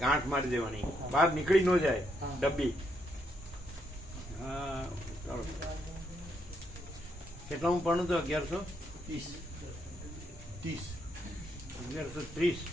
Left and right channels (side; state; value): both; normal; correlation 0.76